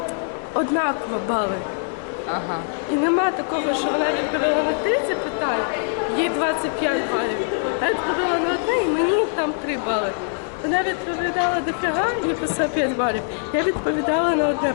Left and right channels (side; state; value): right; silent; digital silence